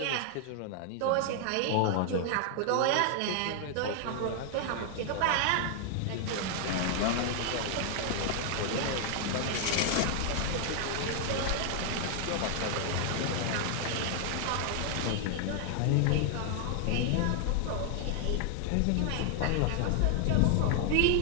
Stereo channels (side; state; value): both; different; correlation 0.00